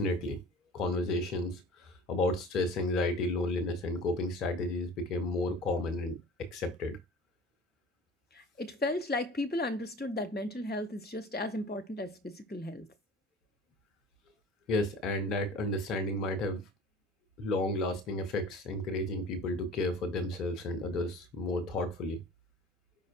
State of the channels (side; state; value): both; normal; correlation 0.42